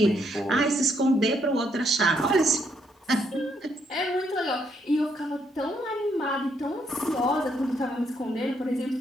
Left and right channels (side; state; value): both; normal; correlation 0.73